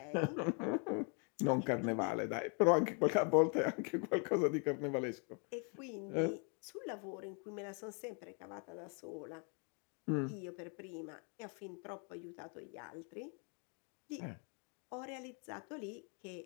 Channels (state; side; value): quieter; right; 37.8 dB